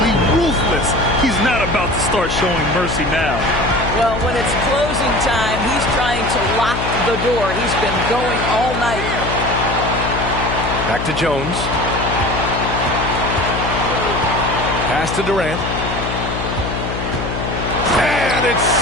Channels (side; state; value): left; noise; hum, 5 dB below the sound